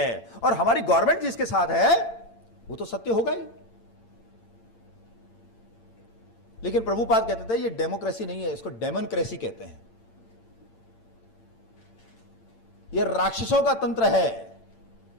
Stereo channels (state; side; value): late; right; 8.8 ms